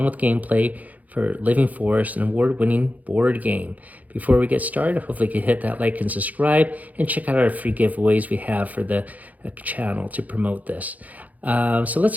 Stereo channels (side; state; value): left; late; 0.077 ms